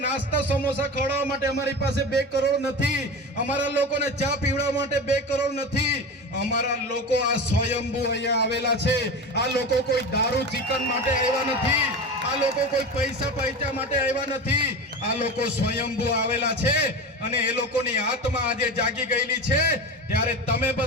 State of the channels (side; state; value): both; normal; correlation 0.27